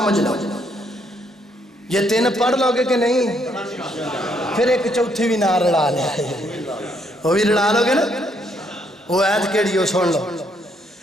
لو۔ یہ 3 پڑھ لو گے کہ نہیں؟ پھر ایک چوتھی بھی نہ رڑا لیا، وہ بھی رڑا لو گے نا؟ وہ آیت کیڑی ہو سن لو،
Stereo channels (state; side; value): normal; both; correlation 0.72